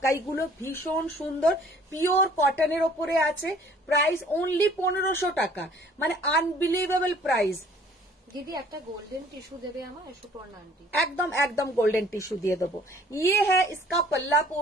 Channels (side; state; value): both; normal; correlation 0.55